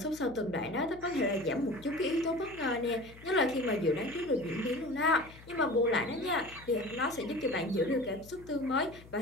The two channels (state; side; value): noise; left; hum, 20 dB below the sound